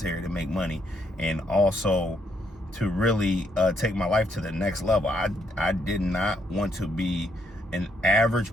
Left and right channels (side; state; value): both; normal; correlation 0.73